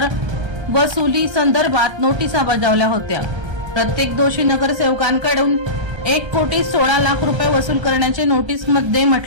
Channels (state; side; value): late; left; 1.3 ms